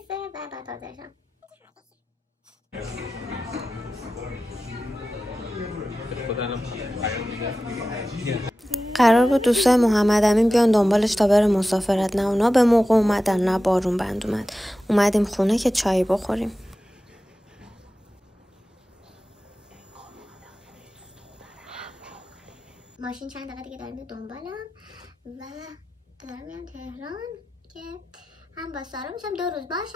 و بعد حاضرشم. قرار بود دوستای محمد امین بیان دنبالش تا بره مسافرت، نه اونا به موقع اومدن نه بارون بند اومد. اومدیم خونه که چای بخوریم. ماشین چند دقیقه دیگه داریم دنبالم و دارم میام تهران که هم با سارا میشم 2 روز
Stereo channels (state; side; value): normal; both; correlation 0.94